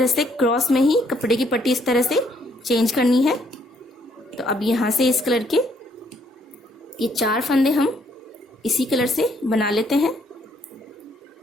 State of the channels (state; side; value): normal; both; correlation 0.68